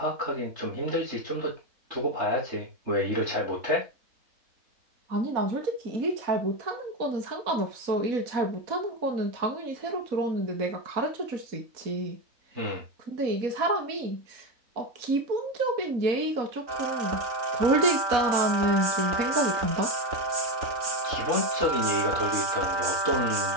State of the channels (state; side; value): late; left; 3.9 ms